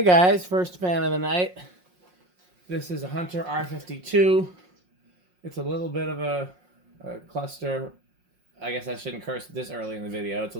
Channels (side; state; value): left; late; 5.6 ms